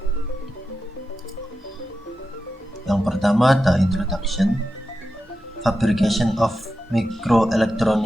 Yang pertama ada introduction. Fabrication of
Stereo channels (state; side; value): normal; both; correlation 0.90